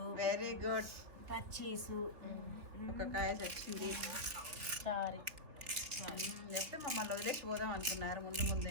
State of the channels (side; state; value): left; late; 3.2 ms